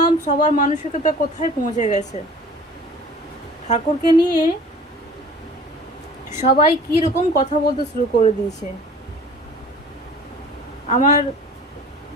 সবার মানসিকতা কোথায় পৌঁছে গেছে। ঠাকুরকে নিয়ে সবাই কি রকম কথা বলতে শুরু করে দিয়েছে। আমার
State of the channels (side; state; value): both; normal; correlation 0.45